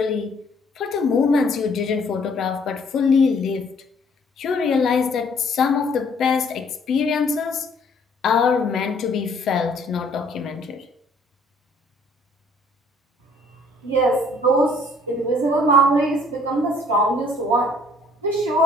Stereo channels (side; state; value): both; normal; correlation 0.60